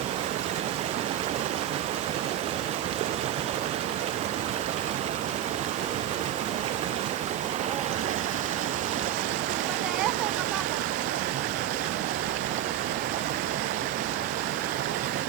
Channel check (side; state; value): left; quieter; 11.5 dB